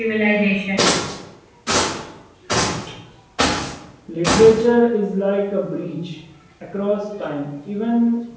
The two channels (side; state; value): both; identical; correlation 1.00